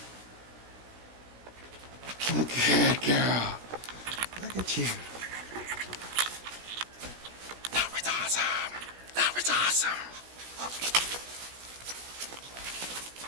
Good girl. Look at you. That was awesome. That was awesome.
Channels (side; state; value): left; late; 16 ms